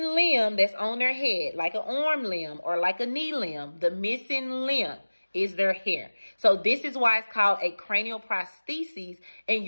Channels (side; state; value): both; inverted; correlation -1.00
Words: limb that's on their head, like an arm limb or like a knee limb. The missing limb is their hair. So this is why it's called a cranial prosthesis, and